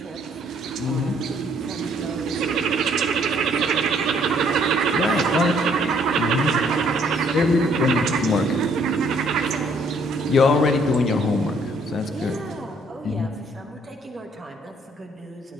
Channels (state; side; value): normal; both; correlation 0.65